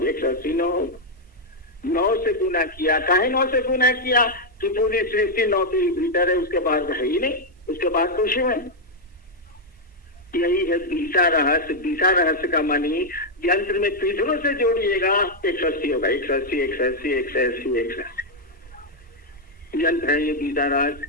180 9 होगा। 9 से गुना किया, काहे 9 से गुना किया? कि पूरी सृष्टि 9 के भीतर है, उसके बाद है ही नहीं, उसके बाद तो शिव है। यही है बीसा रहस्य। बीसा रहस्य का मानी यंत्र में पीछरों से जोड़िएगा 180 होगा, 180 180 180 180 यंत्र है ये बीसा रहस्य।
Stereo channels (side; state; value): both; normal; correlation -0.01